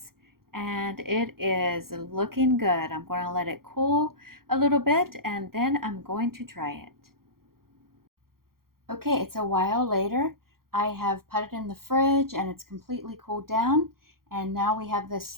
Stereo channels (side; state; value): left; late; 0.93 ms